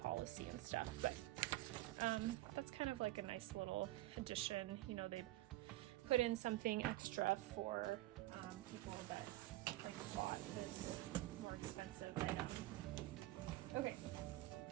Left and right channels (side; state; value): left; quieter; 17.2 dB